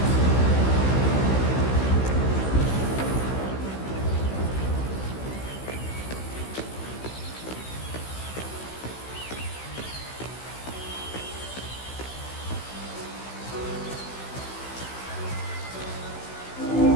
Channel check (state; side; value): late; right; 16 ms